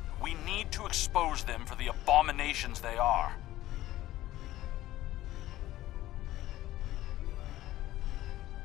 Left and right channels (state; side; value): quieter; right; 15.2 dB